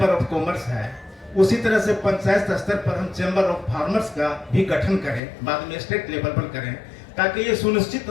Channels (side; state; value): right; drops out; at 5.2 s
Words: ऑफ कॉमर्स है, उसी तरह से पंचायत स्तर पर हम चैम्बर ऑफ फार्मर्स का भी गठन करें, बाद में स्टेट लेवल पर करें, ताकि ये सुनिश्चित